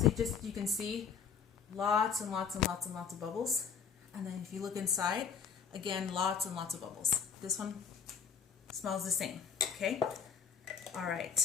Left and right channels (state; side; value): quieter; right; 6.8 dB